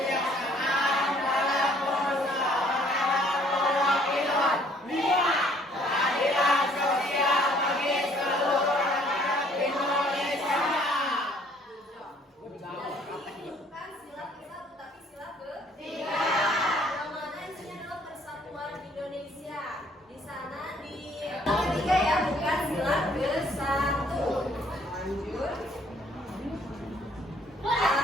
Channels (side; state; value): both; normal; correlation 0.61